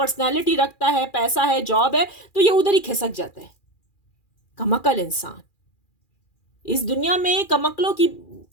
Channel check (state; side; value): late; right; 2.4 ms